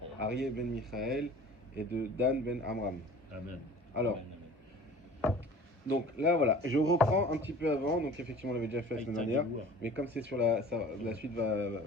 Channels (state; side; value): normal; both; correlation 0.44